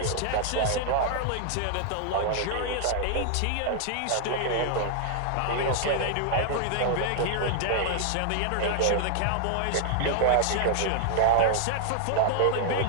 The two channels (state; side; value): different; both; correlation 0.00